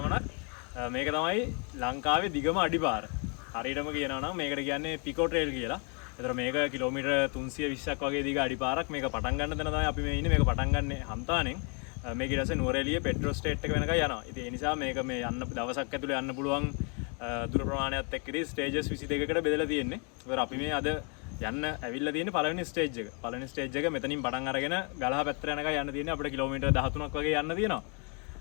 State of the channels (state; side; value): quieter; right; 36.4 dB